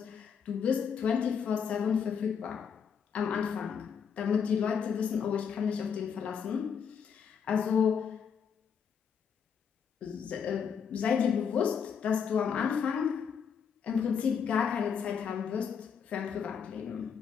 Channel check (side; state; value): right; quieter; 7.0 dB